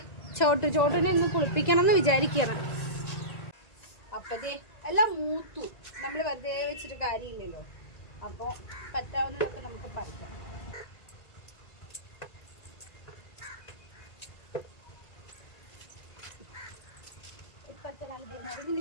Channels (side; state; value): right; late; 1.9 ms